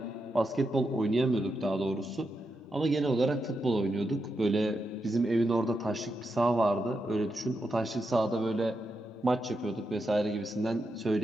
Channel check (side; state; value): both; normal; correlation 0.85